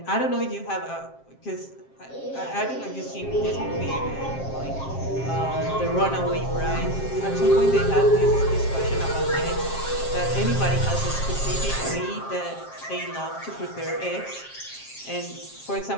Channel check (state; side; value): late; right; 7.5 ms